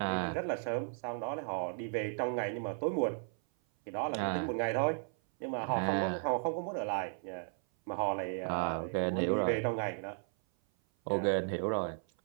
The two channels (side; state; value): left; silent; 55 dB below the other